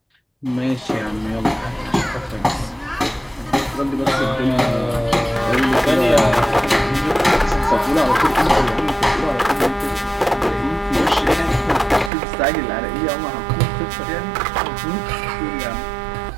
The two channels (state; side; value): drops out; left; at 12.1 s